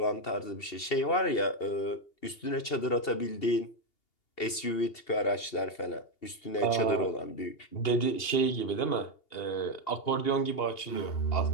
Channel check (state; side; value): late; right; 2.7 ms